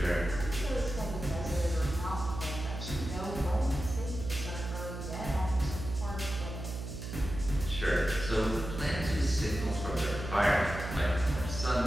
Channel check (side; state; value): right; noise; hum, 7 dB below the sound